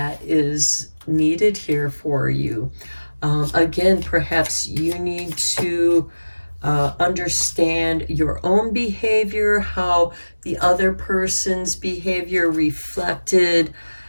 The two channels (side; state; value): both; inverted; correlation -1.00